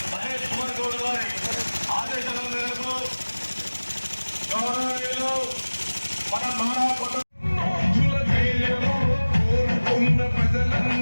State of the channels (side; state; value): both; inverted; correlation -1.00